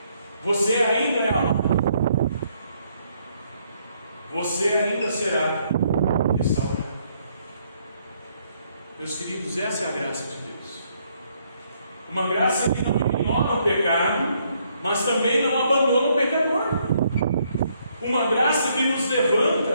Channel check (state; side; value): inverted; both; correlation -0.71